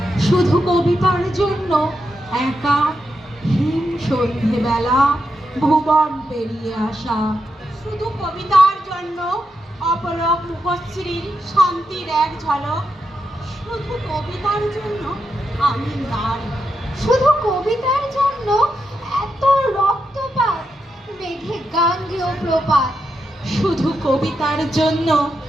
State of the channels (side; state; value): both; normal; correlation 0.85